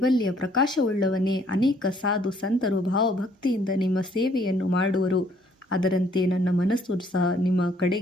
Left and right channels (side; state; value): both; normal; correlation 0.64